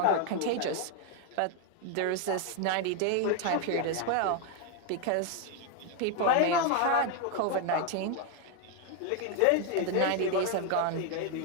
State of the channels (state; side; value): different; both; correlation 0.01